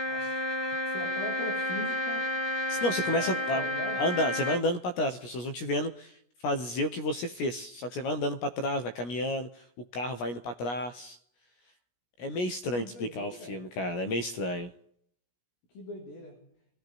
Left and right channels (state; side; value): late; right; 17 ms